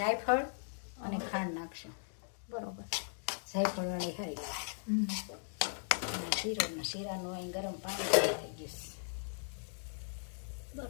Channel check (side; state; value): right; silent; digital silence